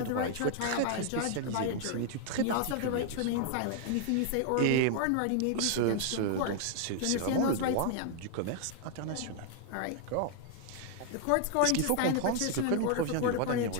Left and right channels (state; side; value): different; both; correlation 0.00